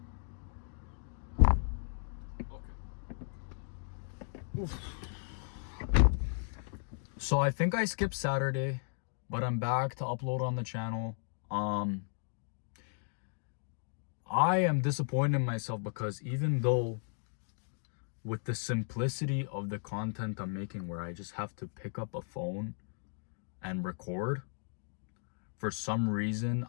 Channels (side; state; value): right; silent; digital silence